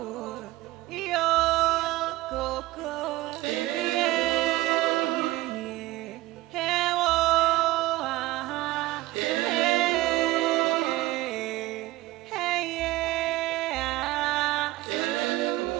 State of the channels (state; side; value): quieter; left; 17.8 dB